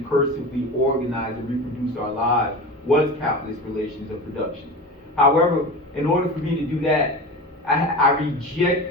organize and reproduce our lives was capitalist relations of production. However, in order for me to do that, I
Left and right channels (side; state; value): both; normal; correlation 0.30